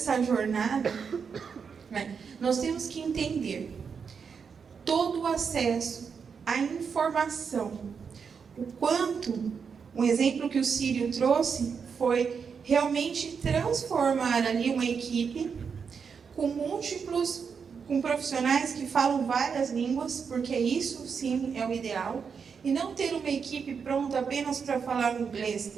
jornada, né, nós temos que entender todo o acesso à informação, o quanto, um exemplo que o Sírio trouxe foi realmente transformar ali uma equipe com profissionais que falam várias línguas, porque isso sim é o ideal, e não ter uma equipe pronta apenas para falar inglês,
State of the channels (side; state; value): left; quieter; 6.1 dB